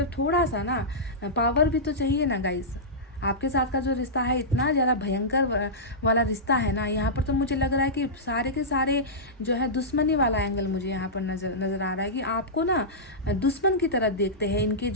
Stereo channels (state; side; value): normal; both; correlation -0.14